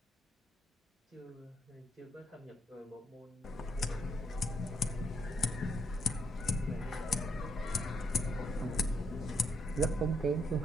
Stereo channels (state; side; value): normal; both; correlation 0.75